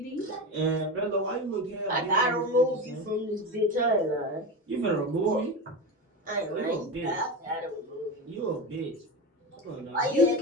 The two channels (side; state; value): both; normal; correlation 0.21